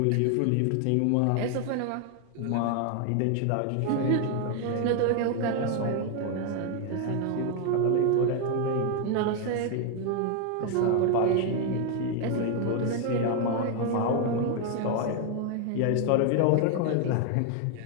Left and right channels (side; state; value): both; different; correlation 0.01